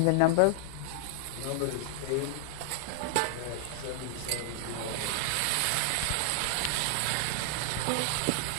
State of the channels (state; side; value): different; both; correlation 0.00